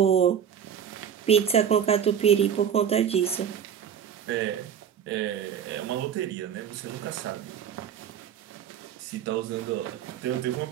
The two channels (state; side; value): quieter; left; 8.6 dB